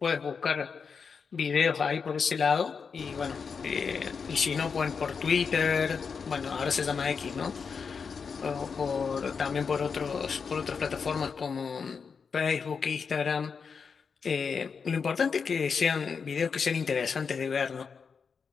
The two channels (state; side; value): quieter; right; 5.7 dB